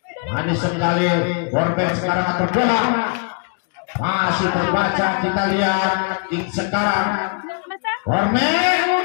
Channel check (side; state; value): right; quieter; 38.8 dB